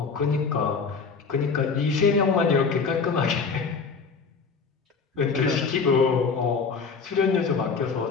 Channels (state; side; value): quieter; right; 5.1 dB